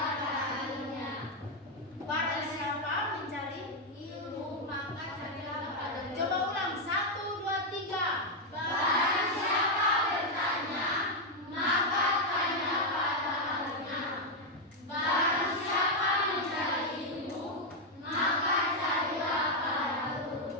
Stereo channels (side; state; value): both; normal; correlation 0.02